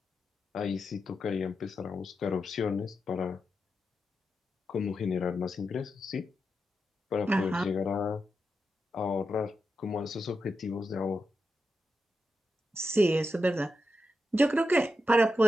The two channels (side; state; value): both; normal; correlation 0.88